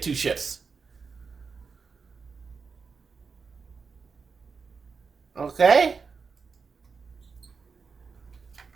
2 ships. Okay?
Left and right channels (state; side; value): quieter; left; 5.2 dB